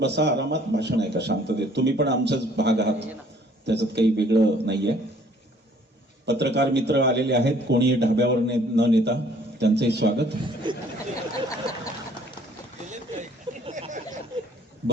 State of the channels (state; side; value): normal; both; correlation 0.58